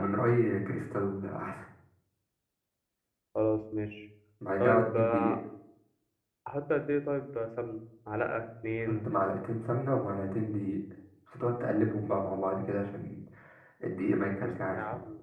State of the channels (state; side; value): identical; both; correlation 1.00